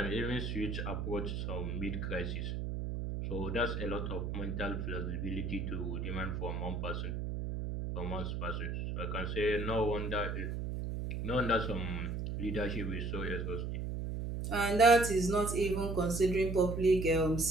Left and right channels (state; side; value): noise; right; hum, 3 dB below the sound